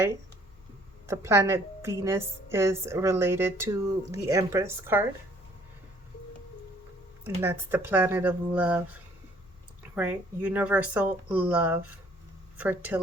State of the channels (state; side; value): normal; both; correlation 0.59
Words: The planet Venus is related to the Empress card. And that's the planet of love, right? Universal love,